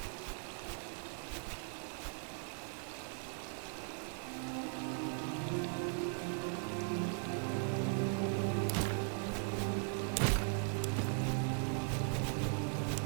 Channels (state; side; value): silent; left; 52 dB below the other